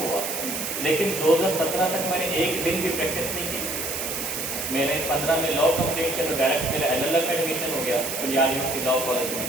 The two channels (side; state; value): right; noise; hiss, 4 dB below the sound